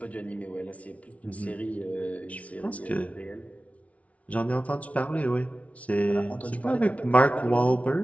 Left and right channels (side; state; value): right; late; 0.066 ms